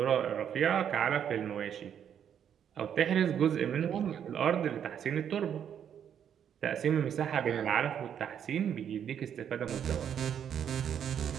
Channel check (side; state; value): left; quieter; 8.8 dB